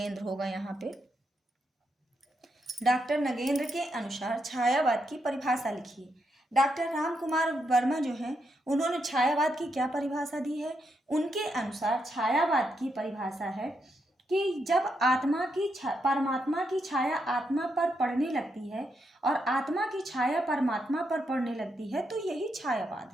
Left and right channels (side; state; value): both; normal; correlation 0.81